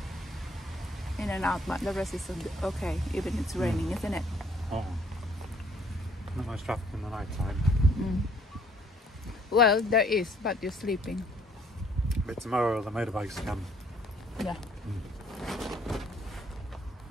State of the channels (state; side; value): normal; both; correlation 0.62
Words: in and out, but the rest is okay, even it's raining, isn't it? Oh. Not much traffic in the night time. Well, there is, but you're sleeping. But tomorrow the motorbikes come. Yeah.